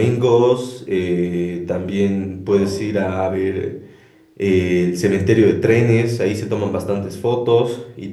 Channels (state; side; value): identical; both; correlation 1.00